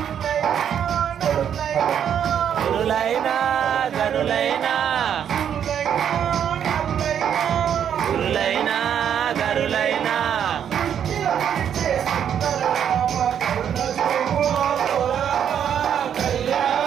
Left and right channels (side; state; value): left; quieter; 8.8 dB